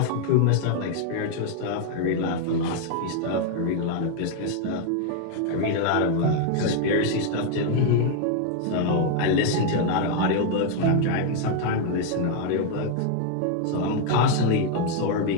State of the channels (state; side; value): different; both; correlation 0.00